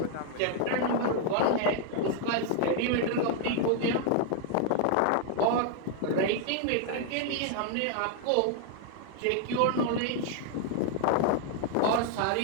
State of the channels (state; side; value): different; both; correlation 0.00